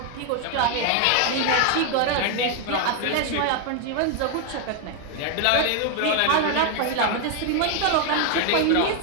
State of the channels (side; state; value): both; different; correlation 0.00